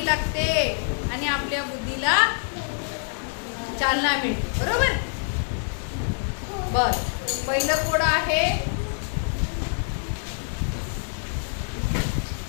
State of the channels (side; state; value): right; silent; digital silence